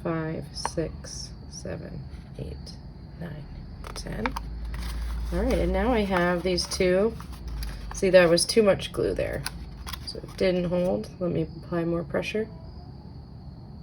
5, 6, 7, 8, 9, 10. All right, and now I have these two. See, there was too much glue there, so it didn't hold. Let me apply more pressure.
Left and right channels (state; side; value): identical; both; correlation 1.00